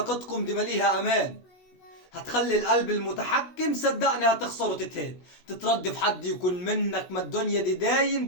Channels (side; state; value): right; late; 16 ms